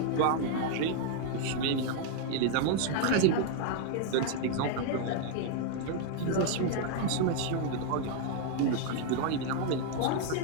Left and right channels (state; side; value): different; both; correlation 0.00